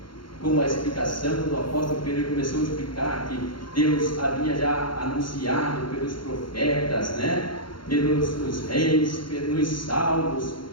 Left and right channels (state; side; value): late; right; 0.73 ms